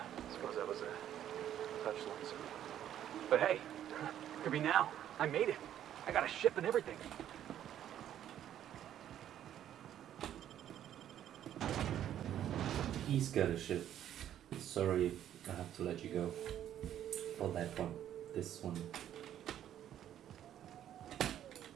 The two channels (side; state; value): left; quieter; 10.9 dB